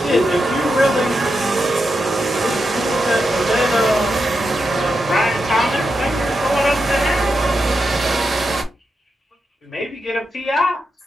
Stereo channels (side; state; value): both; normal; correlation 0.86